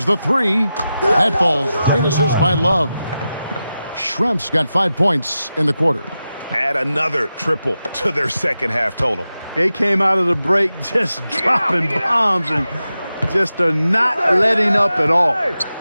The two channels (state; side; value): inverted; both; correlation -0.92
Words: the three. That falls. Great assist by Love. Schrempf's got 5 points in the quarter. Add another triple to their second half total. They came out of the break just dropping bombs and just are not letting up at all.